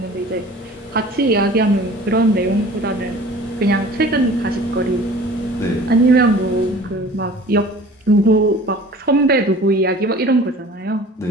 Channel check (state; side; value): normal; both; correlation 0.45